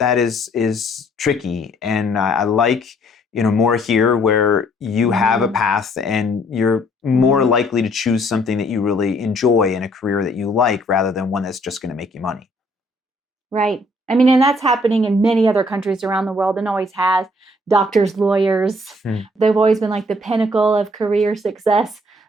is tricky. And I like, more here, where you have a path and you're more likely to choose something that you really enjoy and a career that you like, rather than one that's just going to make you money. Right. I mean, and that's happening in many other countries around the world, and always has. Doctors, lawyers, they've always been like the pinnacle of career success.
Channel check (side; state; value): both; normal; correlation 0.63